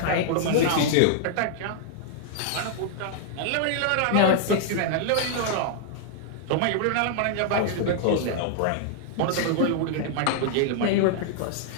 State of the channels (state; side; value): different; both; correlation -0.01